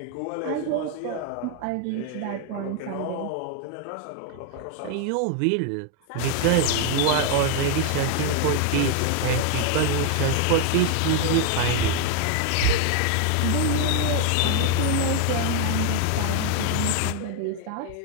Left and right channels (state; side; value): different; both; correlation 0.00